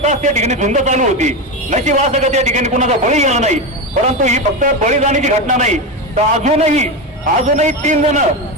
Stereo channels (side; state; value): both; normal; correlation 0.16